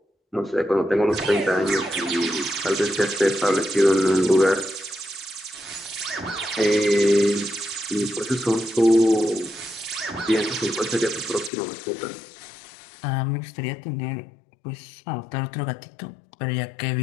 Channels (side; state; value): right; drops out; at 11.5 s